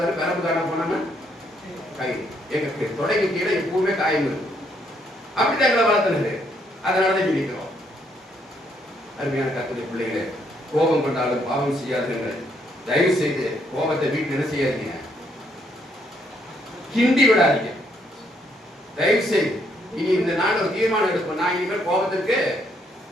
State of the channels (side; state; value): both; normal; correlation 0.72